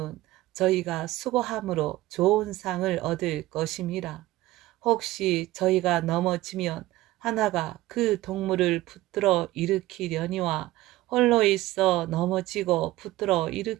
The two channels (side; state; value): left; quieter; 17.0 dB